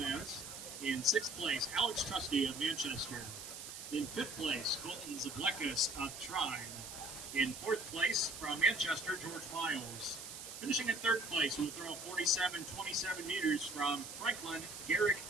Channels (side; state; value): right; noise; hiss, 10 dB below the sound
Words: In 6th place, Alex Trusty of Manchester. In 5th place, Colton Zablekas of Trine. In 4th place, from Manchester, George Miles. Finishing in 3rd place, we'll throw 47-27 meters from Franklin, Garrick